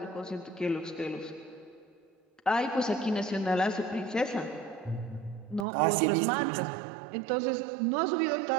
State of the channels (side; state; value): left; drops out; at 5.7 s